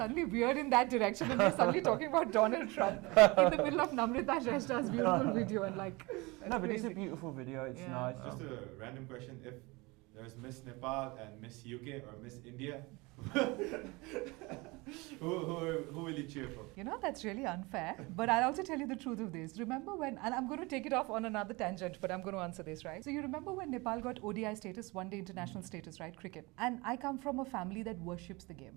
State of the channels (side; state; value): left; quieter; 24.6 dB